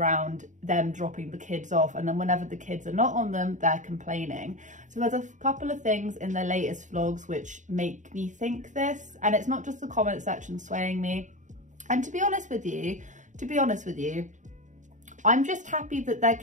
them dropping the kids off, and then whenever the kids are not on them, they're complaining. So there's a couple of things in their latest vlogs which make me think this, and it's not just the comment section swaying me. And to be honest with you, I'm just happy that their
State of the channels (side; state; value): left; late; 0.36 ms